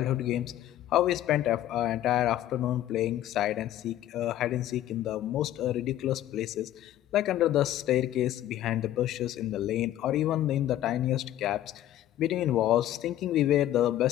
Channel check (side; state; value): right; quieter; 13.0 dB